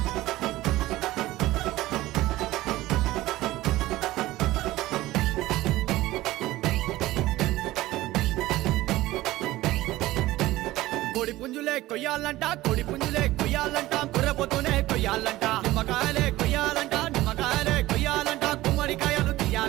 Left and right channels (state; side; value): quieter; left; 17.1 dB